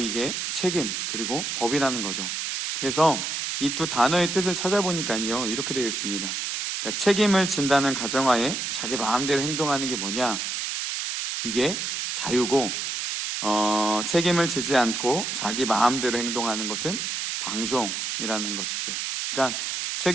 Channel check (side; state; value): right; noise; hiss, 2 dB below the sound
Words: 책임 그리고 법이라는 거죠. 그래서 이 두 단어의 뜻을 찾아보니까요, 이렇게 되어 있습니다. 그러니까 책임을 진다는 가정하에 자기 마음대로 행동하는 게 뭐냐? 이게 자유고, 책임을 지지 않고 자기 마음대로 행동하는 것은 방종이라는 것이죠. 그러니까